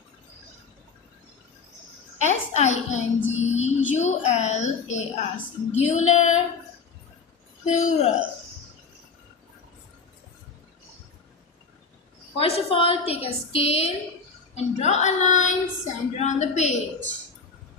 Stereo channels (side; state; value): right; quieter; 5.0 dB